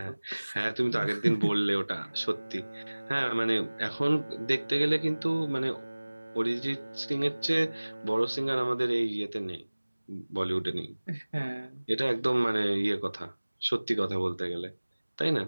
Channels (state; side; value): inverted; both; correlation -1.00